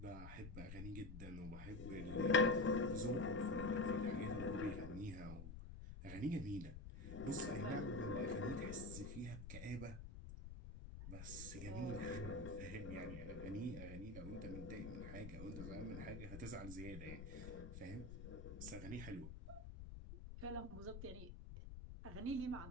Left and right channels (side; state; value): left; noise; rumble, 9 dB below the sound